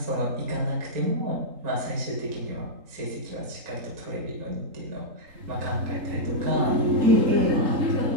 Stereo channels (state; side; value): late; left; 3.8 ms